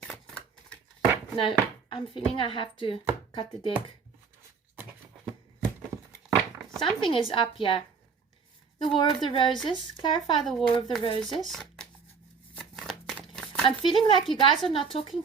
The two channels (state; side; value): quieter; left; 5.5 dB